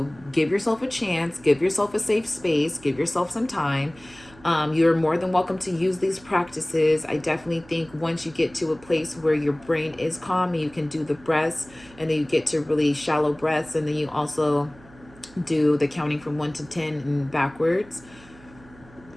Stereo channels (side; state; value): right; noise; hum, 24 dB below the sound